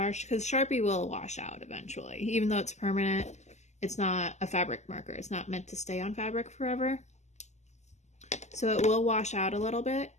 because Sharpie will wash out eventually. Even though it's permanent, it's not a fabric marker. It's not meant to stay on fabric forever. So it will wash out a little bit,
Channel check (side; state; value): right; late; 0.33 ms